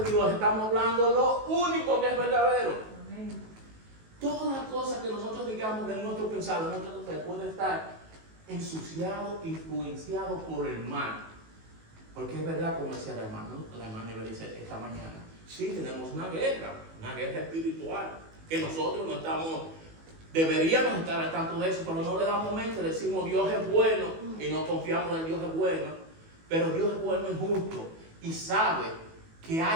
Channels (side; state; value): left; late; 19 ms